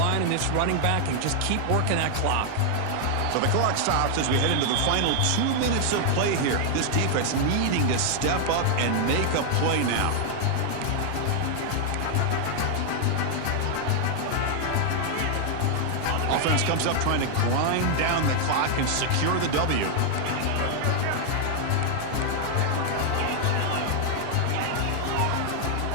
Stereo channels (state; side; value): different; both; correlation 0.00